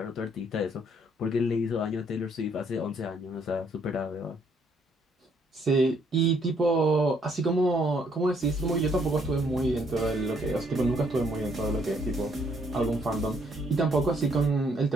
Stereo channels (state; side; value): normal; both; correlation 0.68